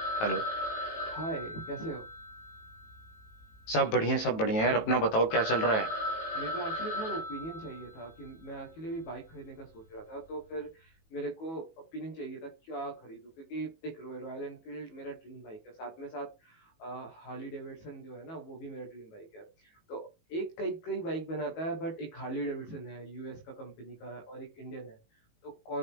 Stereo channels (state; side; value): late; right; 18 ms